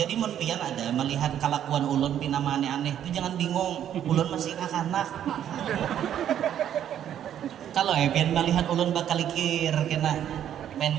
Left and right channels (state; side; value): quieter; left; 10.2 dB